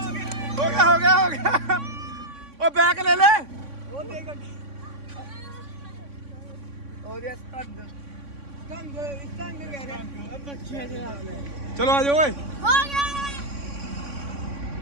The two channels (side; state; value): left; late; 3.6 ms